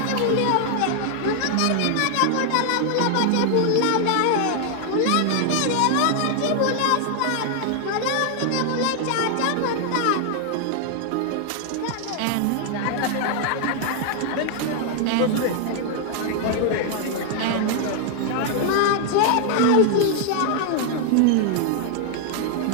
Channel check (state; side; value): different; both; correlation 0.00